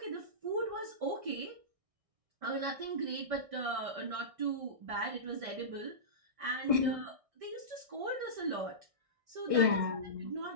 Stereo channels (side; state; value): left; late; 1.6 ms